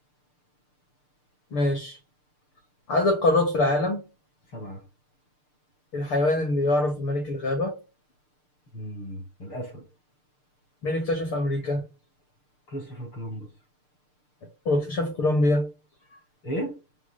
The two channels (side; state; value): right; late; 6.7 ms